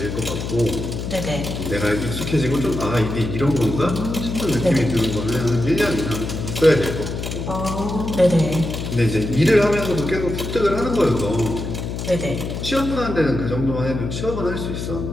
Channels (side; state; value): left; noise; hum, 5 dB below the sound